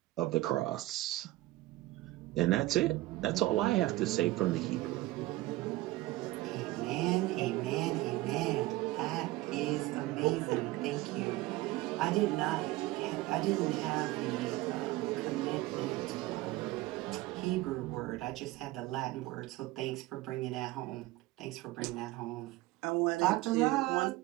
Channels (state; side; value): quieter; left; 18.2 dB